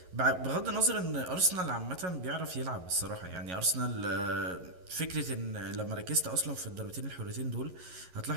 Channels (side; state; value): left; late; 11 ms